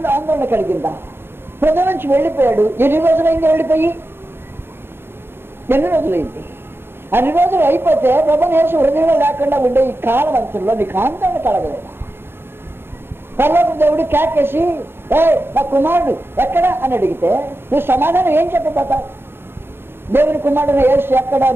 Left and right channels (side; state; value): left; late; 0.11 ms